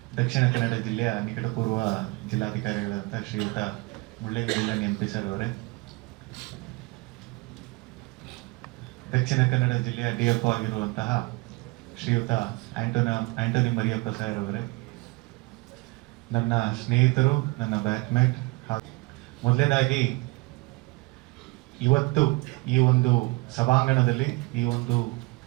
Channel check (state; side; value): quieter; left; 24.6 dB